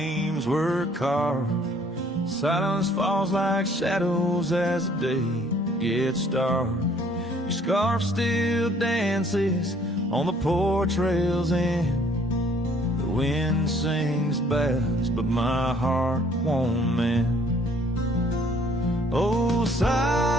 were carved, silence falls like shadows as the day gets dark. Your scarf still dances on the porch rails and the wind sings bass, but my heart won't mend. Oh,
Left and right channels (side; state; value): both; normal; correlation 0.60